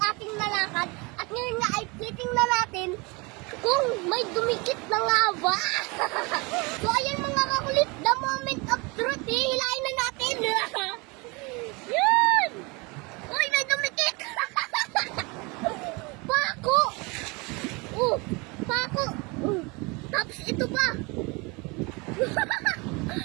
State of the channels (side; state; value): left; quieter; 27.8 dB